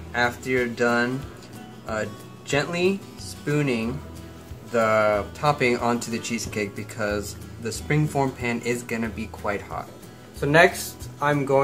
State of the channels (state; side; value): identical; both; correlation 1.00